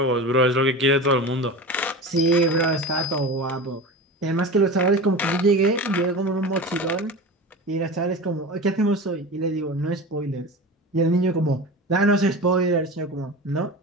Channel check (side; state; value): both; normal; correlation 0.30